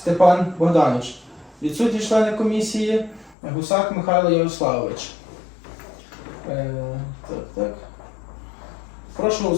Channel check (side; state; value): right; drops out; at 3.4 s